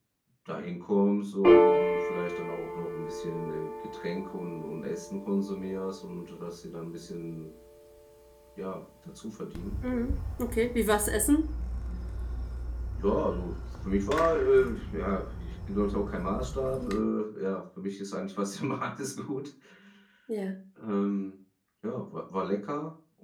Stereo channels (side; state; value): both; identical; correlation 1.00